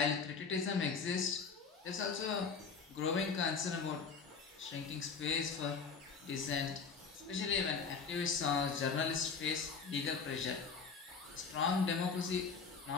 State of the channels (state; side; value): quieter; right; 5.3 dB